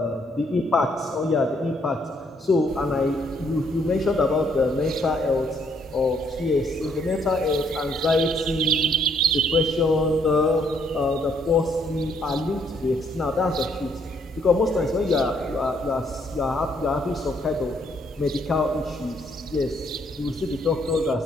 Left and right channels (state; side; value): normal; both; correlation 0.69